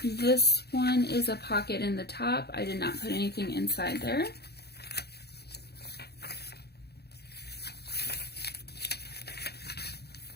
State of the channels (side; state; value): right; late; 0.47 ms